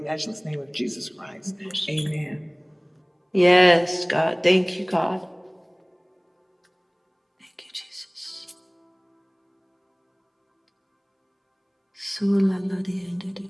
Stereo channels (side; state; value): both; identical; correlation 1.00